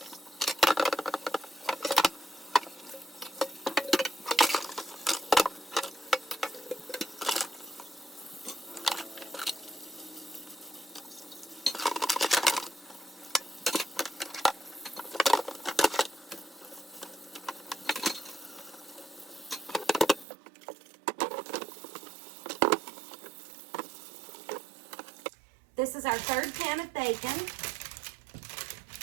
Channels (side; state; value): left; drops out; at 20.2 s